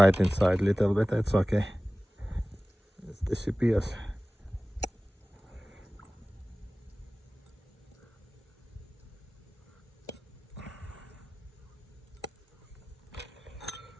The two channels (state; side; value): normal; both; correlation 0.98